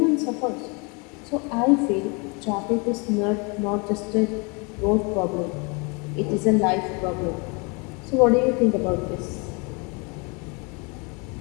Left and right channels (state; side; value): quieter; right; 31.4 dB